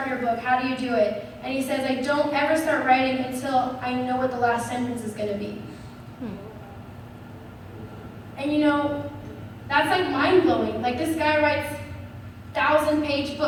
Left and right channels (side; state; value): both; identical; correlation 1.00